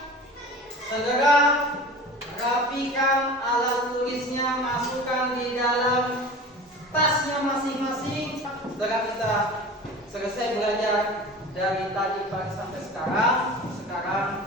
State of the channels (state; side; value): normal; both; correlation 0.37